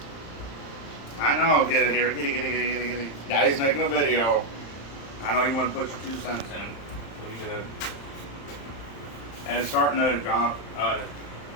I know, get it here, get it. Daddy's making a video. I know you want to put your 2 cents in. What you did. And it's starting to drop.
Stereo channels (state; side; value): late; right; 35 ms